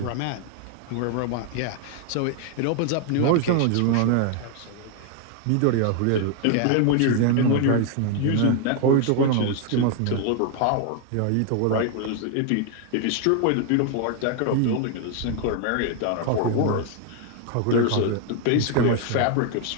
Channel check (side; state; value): both; different; correlation 0.00